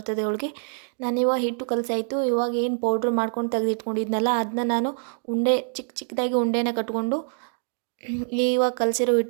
ಹೋಳಿಗೆ. ನಾನಿವಾಗ ಹಿಟ್ಟು ಕಲಸಾಯಿತು. ಇವಾಗ ಏನು ಪೌಡ್ರ್ ಮಾಡ್ಕೊಂಡು ತೆಗೆದಿಟ್ಕೊಂಡಿದ್ನಲ್ಲ ಅದನ್ನ ನಾನು ಚಿಕ್ಕದಾಗಿ ಉಂಡೆನ ಕಟ್ಕೊಂಡು ಇವಾಗ ಕಲಸಿರೋ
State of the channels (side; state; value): left; silent; digital silence